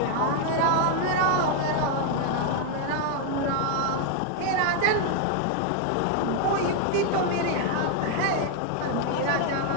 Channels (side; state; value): both; different; correlation 0.01